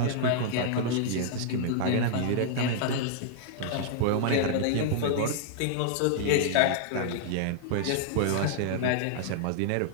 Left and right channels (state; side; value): different; both; correlation -0.01